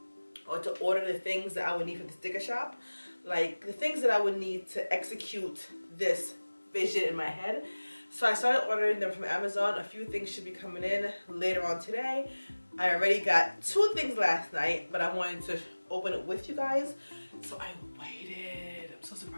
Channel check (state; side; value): inverted; both; correlation -1.00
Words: or to order the things that I would need for the sticker shop, like the things that I would need to execute this vision in my head. So I started ordering them from Amazon. A few things should be coming in later on today. I already got 2 things last night, but I wanted to open it with you guys, so I waited. I'm so